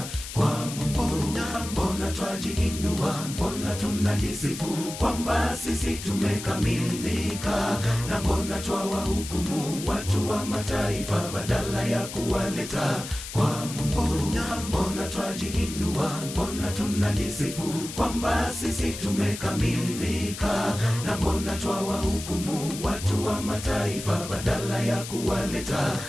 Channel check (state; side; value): noise; left; hiss, 10 dB below the sound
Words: kwa Mungu? Mbona twajiinua, mbona tunajisifu kwamba sisi tumekamilika, na mbona twawahukumu watu wa mataifa badala ya kuwaleta kwa Mungu? Mbona twajiinua, mbona tunajisifu kwamba sisi tumekamilika, na mbona twawahukumu watu wa mataifa badala ya kuwaleta